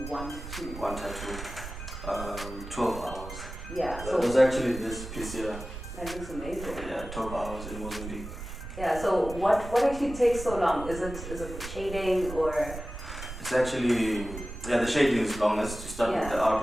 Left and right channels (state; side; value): noise; right; rumble, 10 dB below the sound